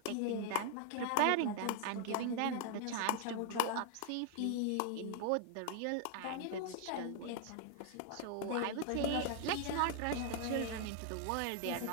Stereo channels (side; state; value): both; different; correlation 0.00